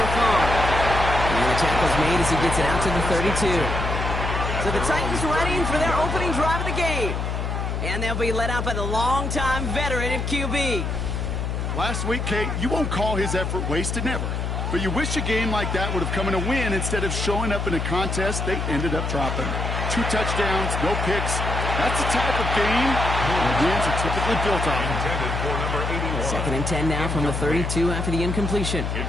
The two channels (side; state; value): left; noise; hum, 2 dB below the sound